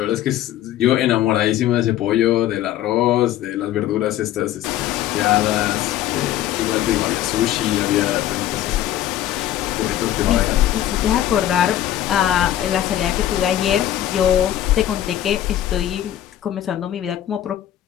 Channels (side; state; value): right; quieter; 12.5 dB